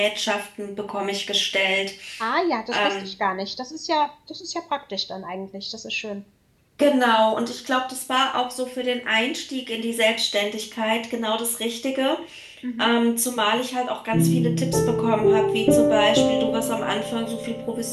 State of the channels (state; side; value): identical; both; correlation 1.00